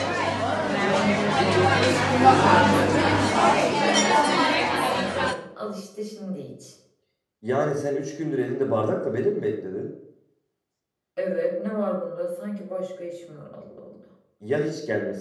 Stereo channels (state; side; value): identical; both; correlation 1.00